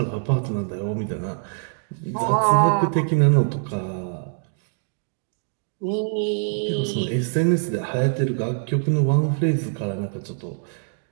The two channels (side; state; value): left; silent; digital silence